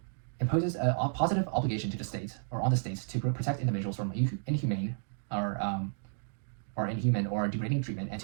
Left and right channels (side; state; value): left; silent; digital silence